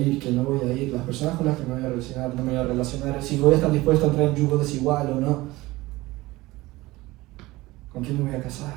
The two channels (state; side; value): quieter; left; 19.5 dB